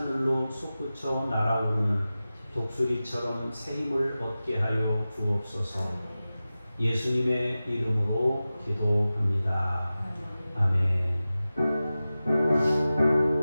솟구쳐 날아오르는 독수리처럼 새 힘을 얻게 하여 주옵소서. 예수님의 이름으로 기도합니다. 아멘.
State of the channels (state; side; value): inverted; both; correlation -0.95